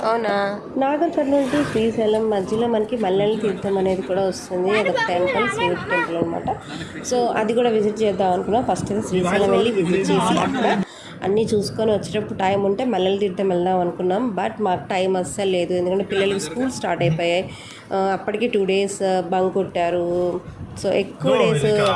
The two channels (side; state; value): both; identical; correlation 1.00